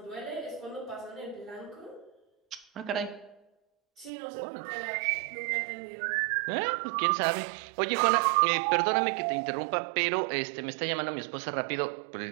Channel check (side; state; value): left; drops out; at 4.1 s